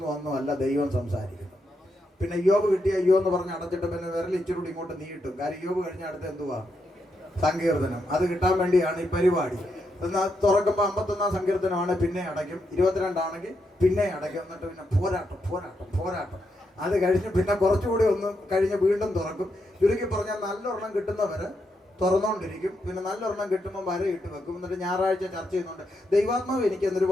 ഒന്നും അല്ല ദൈവം സംസാരിക്കുന്നു. പിന്നെ യോബ് കിട്ടിയ യോ എന്ന് പറഞ്ഞ് അടച്ചിട്ട് പിന്നെ വിരൽ ഇച്ചിരി ഇങ്ങോട്ട് നീട്ടും. കാര്യം യോബ് കഴിഞ്ഞ അടുത്ത് എന്തുവാ? സങ്കീർത്തനം. അത് കിട്ടാൻ വേണ്ടിയാണ് ഈ പരിപാടി. എന്നാൽ തുറക്കുമ്പോൾ 51 സങ്കീർത്തനമാണ്, പിന്നെ അടയ്ക്കും. 22 ആണെങ്കിൽ പിന്നെ അടയ്ക്കും. എന്നിട്ട് പിന്നെ പോരാട്ടം. അത് കഴിഞ്ഞ് പിന്നെ കുറച്ചുകൂടി ഒന്ന് കഴിഞ്ഞ് വീണ്ടും തുറക്കും. ചുരുക്കി പറഞ്ഞാൽ നല്ലൊരെണ്ണം കിട്ടുന്നവര് തുറന്നുകൊണ്ടിരിക്കും. പിന്നെ നല്ലൊരെണ്ണം കിട്ടുമ്പോൾ വരയിട്ട് വെക്കും. എന്നിട്ട് ഞായറാഴ്ച ചർച്ച ചെയ്യുന്നുണ്ട്. ദൈവാത്മാവ് എനിക്ക് എന്നൊരു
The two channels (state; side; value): normal; both; correlation 0.82